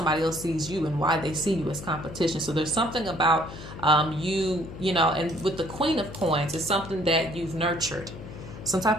else sees you and why they see you as competition. So there's something about you know, and with the Queen of Coins, it's something that you've nurtured. Some type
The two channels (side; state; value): left; noise; hum, 13 dB below the sound